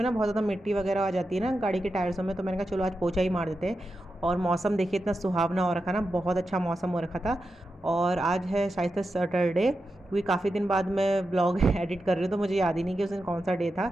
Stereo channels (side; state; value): both; normal; correlation 0.89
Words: ना बहुत ज़्यादा मिट्टी वगैरह आ जाती है ना गाड़ी के टायर्सों में। तो मैंने कहा चलो आज पोछा ही मार देते हैं। और मौसम देखिए इतना सुहावना हो रखा ना, बहुत अच्छा मौसम हो रखा था। और आज है शायद से सैटरडे, क्योंकि काफ़ी दिन बाद मैं ब्लॉग एडिट कर रही हूँ तो मुझे याद ही नहीं कि उस दिन कौन सा डे